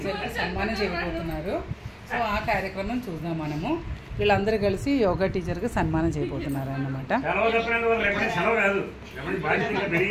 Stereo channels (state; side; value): identical; both; correlation 1.00